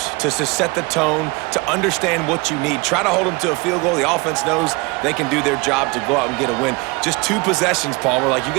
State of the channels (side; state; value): left; quieter; 26.4 dB